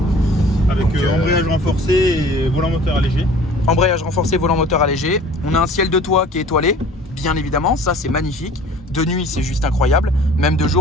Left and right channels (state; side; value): normal; both; correlation 0.48